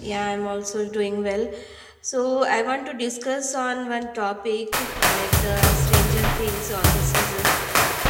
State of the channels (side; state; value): both; identical; correlation 1.00